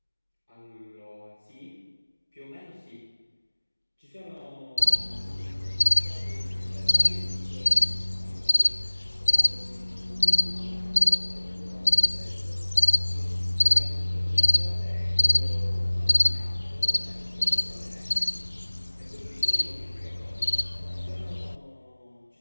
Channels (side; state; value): both; inverted; correlation -1.00